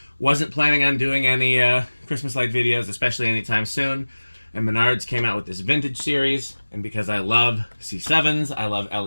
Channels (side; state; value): both; inverted; correlation -1.00